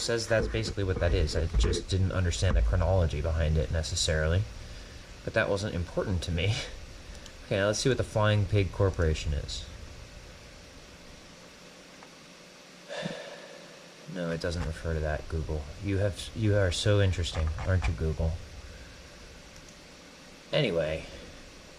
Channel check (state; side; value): identical; both; correlation 1.00